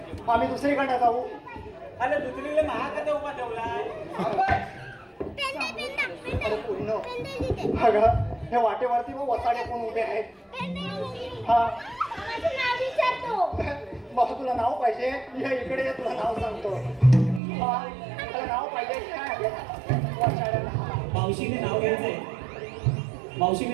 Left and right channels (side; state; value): left; drops out; at 17.4 s